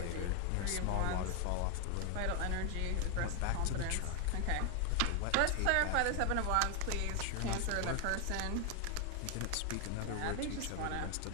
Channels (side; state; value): both; different; correlation 0.01